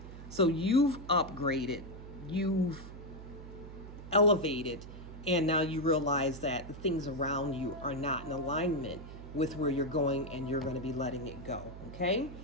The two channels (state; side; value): noise; right; hum, 13 dB below the sound